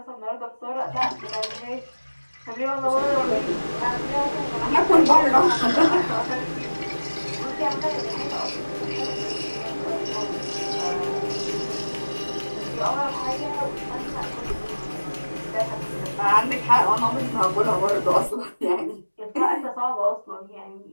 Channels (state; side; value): inverted; both; correlation -1.00